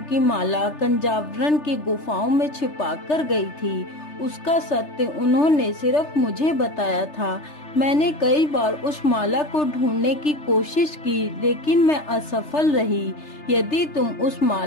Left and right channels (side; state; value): right; late; 3.3 ms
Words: की माला कंजावरण की गुफाओं में छिपा कर गई थी। उसका सत्य उन्होंने सिर्फ मुझे बताया था। मैंने कई बार उस माला को ढूंढने की कोशिश की, लेकिन मैं असफल रही। यदि तुम उस